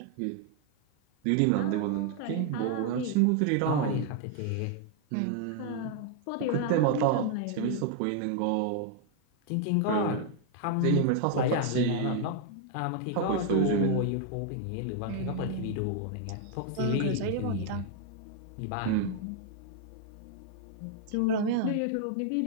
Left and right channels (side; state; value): both; different; correlation 0.00